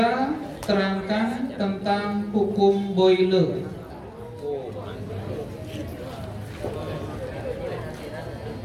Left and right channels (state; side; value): identical; both; correlation 1.00